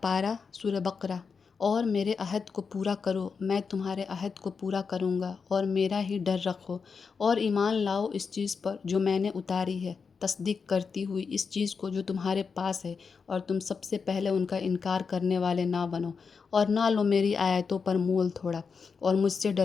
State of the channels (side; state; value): right; quieter; 5.5 dB